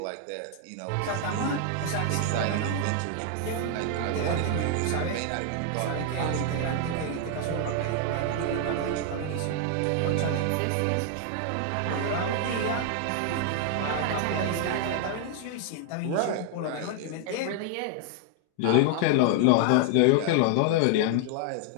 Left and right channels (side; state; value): both; different; correlation 0.00